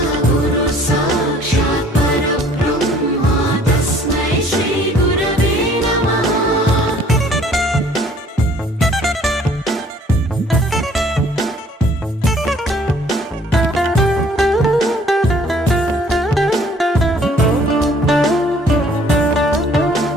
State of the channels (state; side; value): normal; both; correlation 0.57